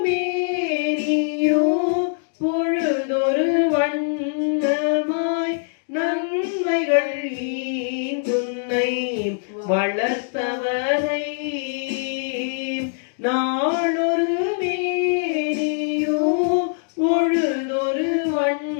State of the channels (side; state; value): right; silent; digital silence